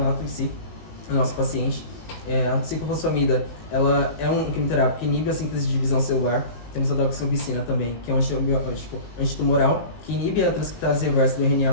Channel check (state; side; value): late; right; 19 ms